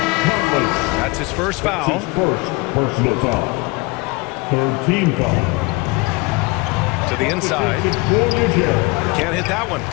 his first foul. That's his first personal foul. Third team foul. To the inside. Can't hit that one.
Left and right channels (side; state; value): right; quieter; 25.6 dB